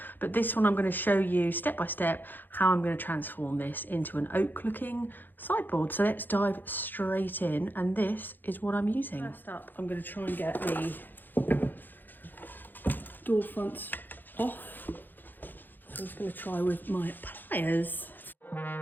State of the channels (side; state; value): right; late; 0.090 ms